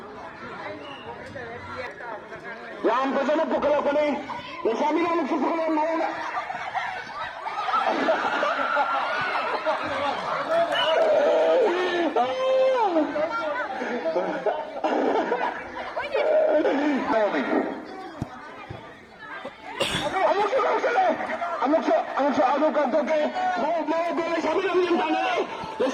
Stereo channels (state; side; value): identical; both; correlation 1.00